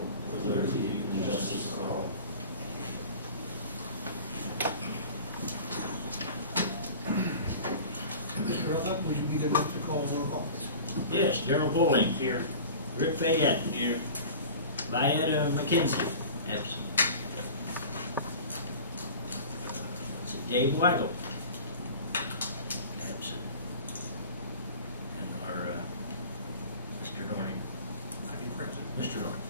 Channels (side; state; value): both; inverted; correlation -0.39